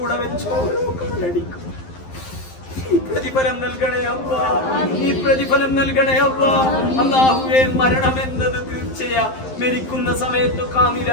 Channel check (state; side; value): late; right; 11 ms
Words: വെച്ചോ കണ്ടടിക്കും. നീ പ്രതിഫലം നൽകണേ അല്ലാഹ്. നീ പ്രതിഫലം നൽകണേ അല്ലാഹ്. അല്ലാഹുവേ മരണം എന്നത് തീർച്ചയാ. മരിക്കുന്ന സമയത്ത്